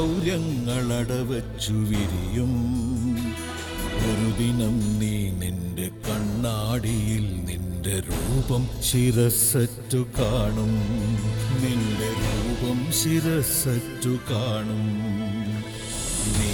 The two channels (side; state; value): both; identical; correlation 1.00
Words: വിരിയും. ഒരു ദിനം നീ നിന്റെ കണ്ണാടിയിൽ നിന്റെ രൂപം ശിരസ്സറ്റു കാണും. നിന്റെ രൂപം ശിരസ്സറ്റു കാണും. നീ